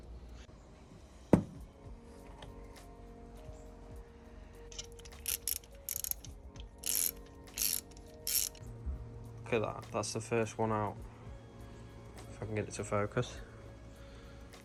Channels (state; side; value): identical; both; correlation 1.00